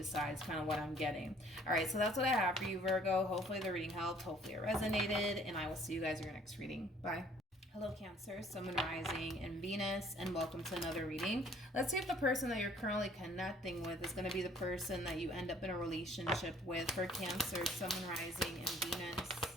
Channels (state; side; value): normal; both; correlation 0.58